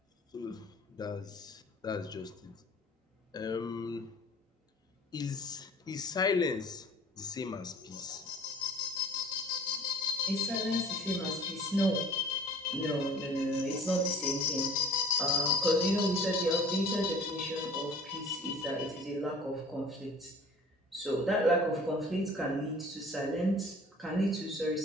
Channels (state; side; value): normal; both; correlation 0.47